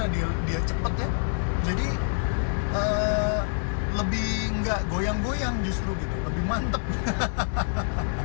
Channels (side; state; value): right; silent; digital silence